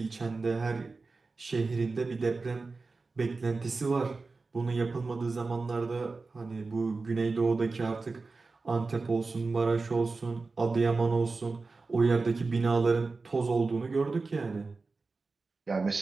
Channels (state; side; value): quieter; left; 3.9 dB